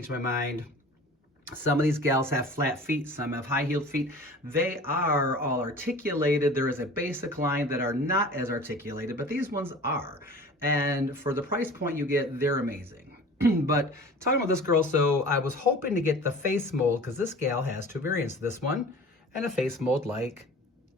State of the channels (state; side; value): normal; both; correlation 0.42